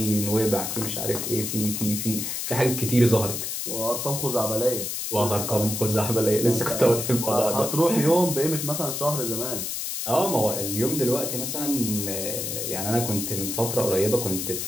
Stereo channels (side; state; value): left; noise; hiss, 3 dB below the sound